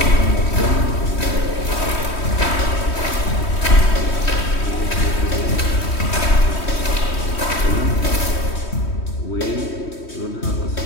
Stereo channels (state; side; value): late; right; 3.1 ms